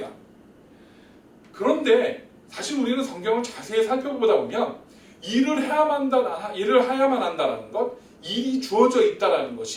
그런데 사실 우리는 성경을 자세히 살펴보다 보면 일을 해야만 한다라는 것, 일이 주어져 있다라는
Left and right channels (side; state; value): both; identical; correlation 1.00